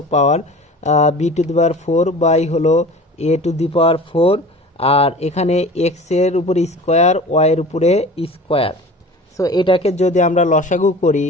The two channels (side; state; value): both; normal; correlation 0.39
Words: power, b to the power 4 by হলো এ টু দি পাওয়ার 4, আর এখানে এক্স এর উপরে স্কোয়ার ওয়াই এর উপরে স্কোয়ার। সো এটাকে যদি আমরা